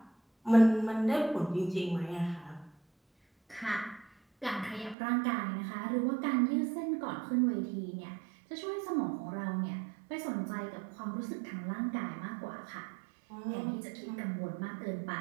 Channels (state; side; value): drops out; left; at 5.0 s